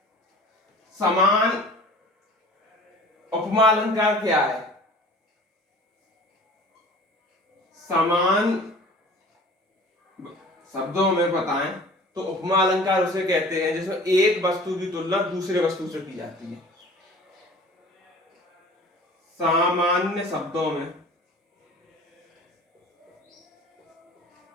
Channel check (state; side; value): normal; both; correlation 0.44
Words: समान? उपमा अलंकार क्या है? समान शब्दों में बताएं तो उपमा अलंकार उसे कहते हैं जिसमें एक वस्तु की तुलना दूसरे वस्तु से की जाती है। सामान्य शब्दों में